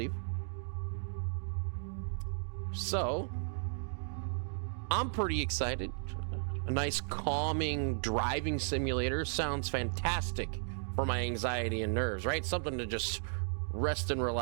So, I'm pretty excited. A nice calming driving simulator sounds fantastic for my anxiety and nerves, right? Something to just rest and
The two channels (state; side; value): silent; left; digital silence